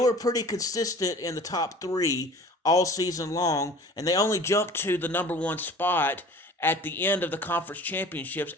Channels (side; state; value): both; normal; correlation 0.44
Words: pretty consistent in the top 3 all season long, and they only jumped to the number 1 spot at the end of the conference championships